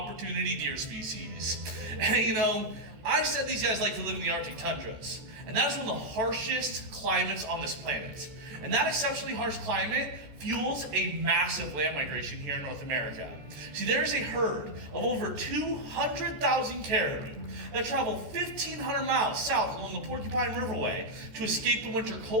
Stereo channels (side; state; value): left; late; 14 ms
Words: deer species. And you know, I said these guys like to live in the Arctic tundras. And that is one of the harshest climates on this planet. And that exceptionally harsh climate fuels a massive land migration here in North America. See, there is a herd of over 200,000 caribou that travel 1,500 miles south along the Porcupine Riverway to escape the winter